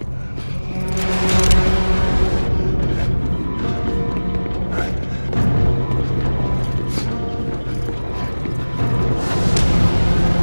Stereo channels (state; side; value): inverted; both; correlation -1.00